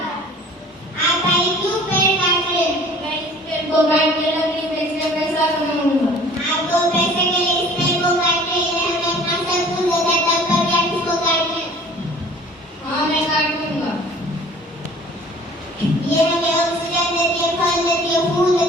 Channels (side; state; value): both; normal; correlation 0.49